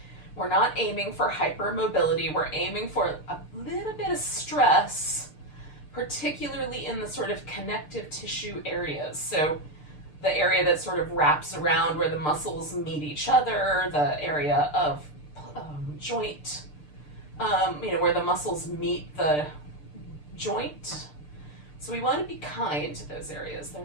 We're not aiming for hypermobility. We're aiming for a little bit of stress, particularly in the sort of connective tissue areas. So the area that sort of wraps around where the muscles meet each other, the area of joint, where the muscles meet the joint. So we want to be kind to those areas.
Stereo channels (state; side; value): late; right; 6.7 ms